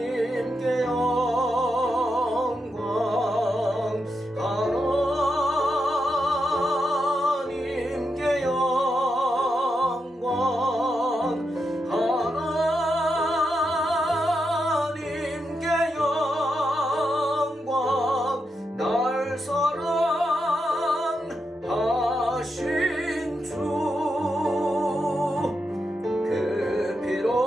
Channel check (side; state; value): both; normal; correlation 0.85